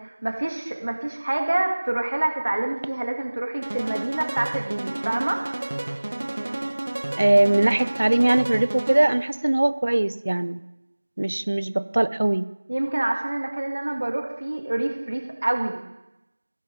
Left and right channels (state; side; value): inverted; both; correlation -1.00